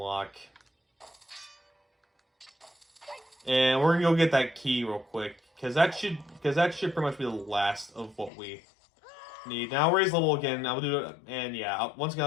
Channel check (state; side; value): drops out; right; at 8.3 s